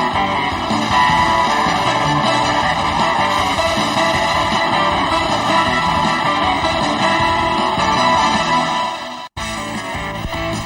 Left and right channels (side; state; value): both; identical; correlation 1.00